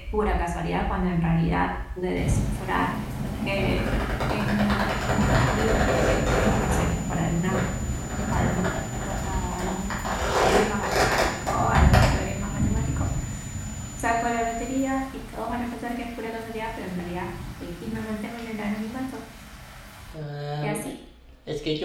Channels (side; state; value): both; identical; correlation 1.00